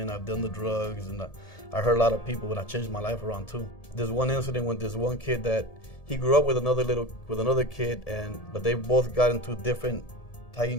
I've done the drugs, and I hurt a lot of people, and I changed my life around too. There's one incident with this one kid that he grew up with another kid, but they both got into different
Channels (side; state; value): right; late; 1.7 ms